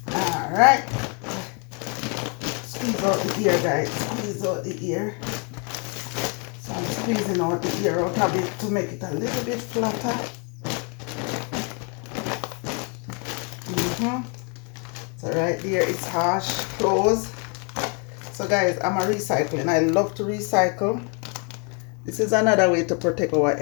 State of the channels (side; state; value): right; quieter; 36.2 dB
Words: Alright. Squeeze out the ear guys, squeeze out the ear. So I'm squeezing out the ear out of it to make it a little bit flatter. So right there it's harsh, close. So guys, I'm a recycling. I love to recycle. This is another way to protect our